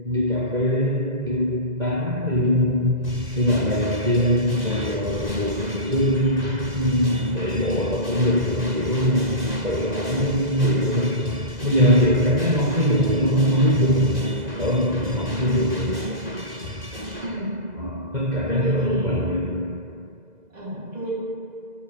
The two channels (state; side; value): late; left; 2.0 ms